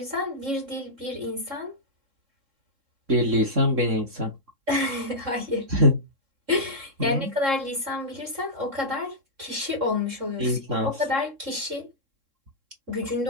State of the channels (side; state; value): left; late; 3.7 ms